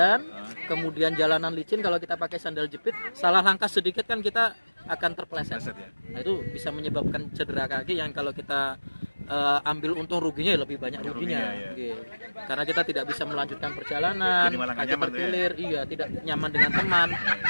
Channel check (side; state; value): both; inverted; correlation -1.00